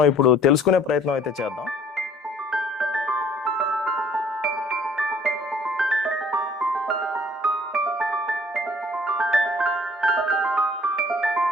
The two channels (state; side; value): normal; both; correlation 0.55